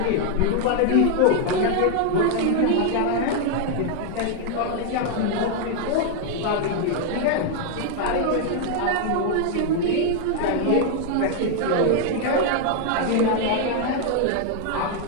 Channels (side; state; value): both; different; correlation 0.00